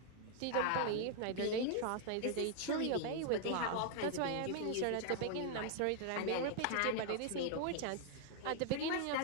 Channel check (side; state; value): both; different; correlation 0.00